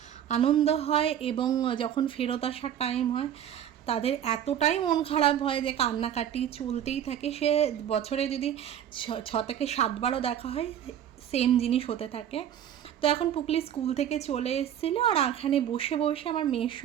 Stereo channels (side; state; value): left; quieter; 10.1 dB